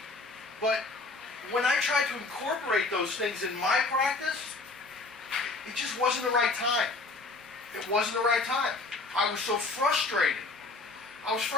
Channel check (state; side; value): quieter; right; 3.6 dB